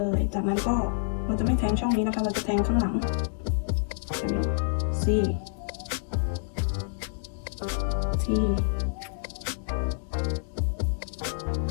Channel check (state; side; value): silent; right; digital silence